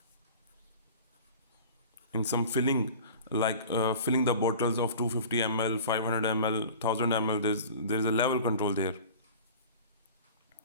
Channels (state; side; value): inverted; both; correlation -0.40